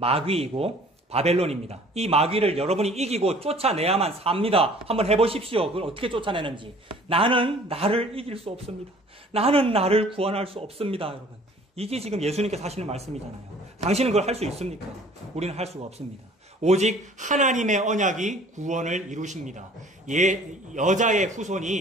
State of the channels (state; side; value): normal; both; correlation 0.52